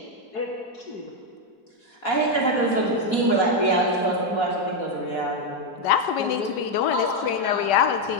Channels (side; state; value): right; late; 5.1 ms